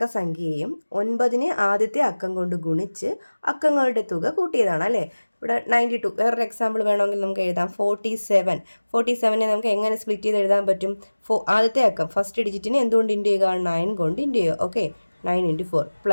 സംഖ്യയും 9നെ ആദ്യത്തെ അക്കം കൊണ്ട് ഗുണിച്ച് അക്കങ്ങളുടെ തുക കൂട്ടിയതാണ് അല്ലേ? ഇവിടെ 92. വേറൊരു എക്സാമ്പിൾ വേണമെങ്കിൽ നമുക്ക് എഴുതാം. 47നെ നമുക്ക് എങ്ങനെ സ്പ്ലിറ്റ് ചെയ്ത് എഴുതാൻ പറ്റും? ആദ്യത്തെ അക്കം ഫസ്റ്റ് ഡിജിറ്റിനെ എന്തുകൊണ്ട് ഇൻറ്റു ചെയ്യുക? 9 കൊണ്ട് ഇൻറ്റു ചെയ്യുക. ഓക്കെ, 9 ഇൻറ്റു 4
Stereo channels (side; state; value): both; inverted; correlation -1.00